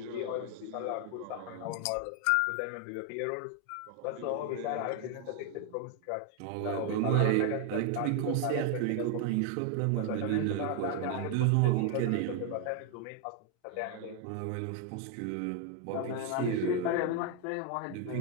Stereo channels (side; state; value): both; different; correlation 0.01